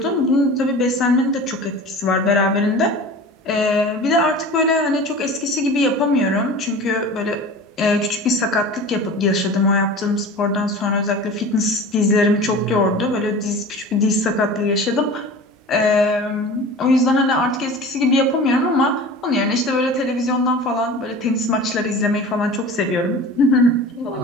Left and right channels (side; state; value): both; normal; correlation 0.37